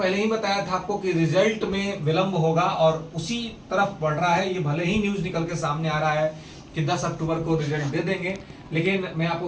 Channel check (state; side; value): identical; both; correlation 1.00